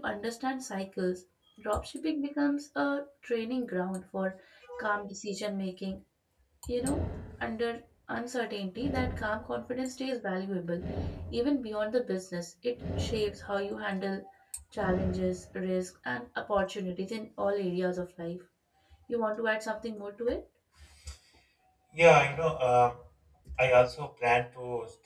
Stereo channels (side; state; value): both; identical; correlation 1.00